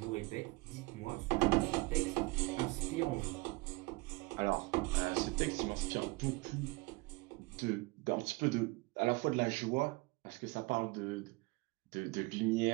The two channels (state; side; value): quieter; left; 24.5 dB